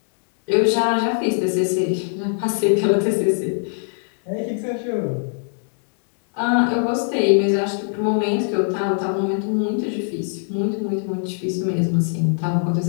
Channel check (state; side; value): silent; right; digital silence